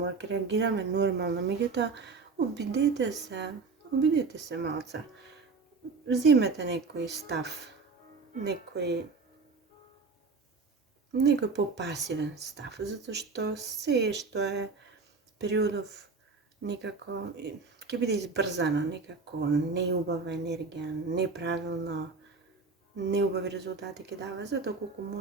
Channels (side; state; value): left; quieter; 4.4 dB